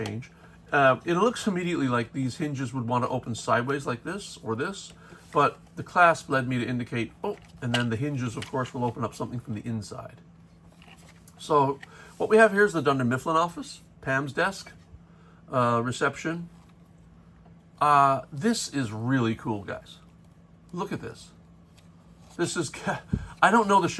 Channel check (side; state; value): both; identical; correlation 1.00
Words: It looks immediately like these hinges would want to open sideways like this or this, but the clasp led me to indicate, oh, and then the hinges, of course, will open up something from the inside. So what we have here is the Dunder Mifflin office, Pam's desk, reception. This is really cool, guys. Look at this. This is, I don't know the